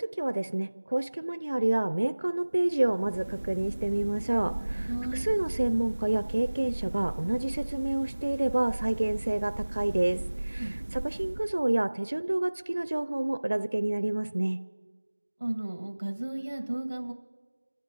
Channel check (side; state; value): both; inverted; correlation -1.00